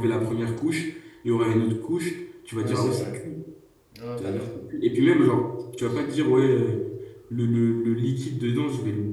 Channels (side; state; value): both; identical; correlation 1.00